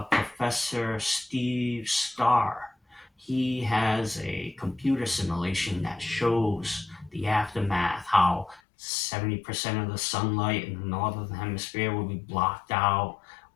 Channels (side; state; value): right; drops out; at 8.6 s